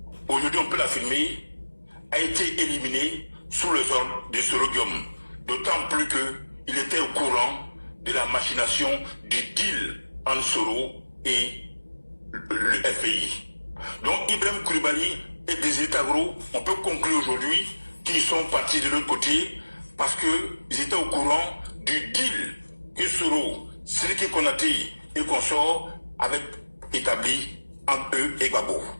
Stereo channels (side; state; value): both; inverted; correlation -1.00